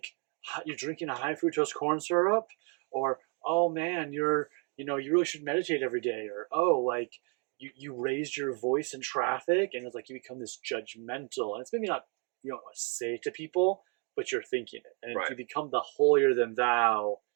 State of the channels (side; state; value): left; quieter; 36.7 dB